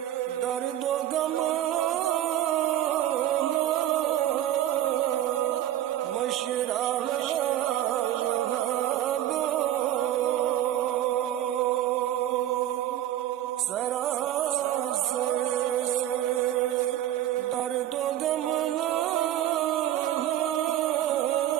दर्द गम मशरा सरासर दर्द गम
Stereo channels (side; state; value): left; quieter; 12.4 dB